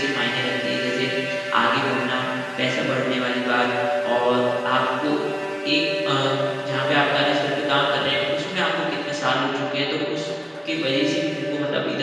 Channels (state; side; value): identical; both; correlation 1.00